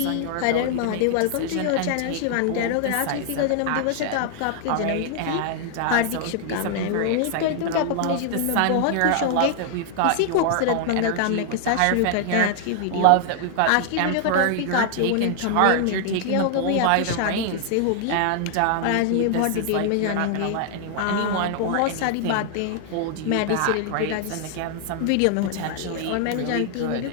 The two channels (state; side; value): different; both; correlation 0.00